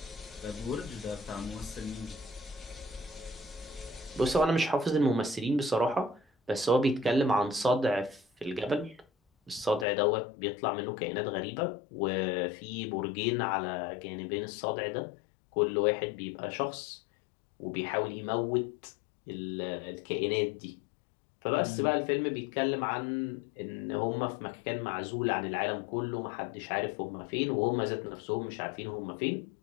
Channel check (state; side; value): drops out; right; at 9.9 s